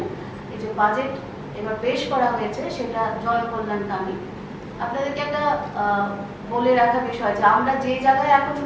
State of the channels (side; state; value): both; identical; correlation 1.00